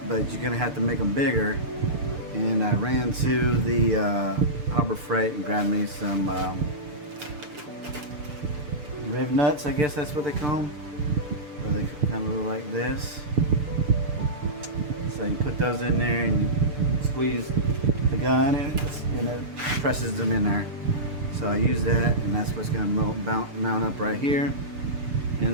you're gonna have to make them bigger. And I ran to the Harbor Freight and grabbed me some riv nuts, I guess that's what they call them. Where they kind of look like this. So you put those in there and you squeeze the gun, and it presses them in there. So I use that, and that's what's going to mount up right here.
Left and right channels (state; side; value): late; left; 6.8 ms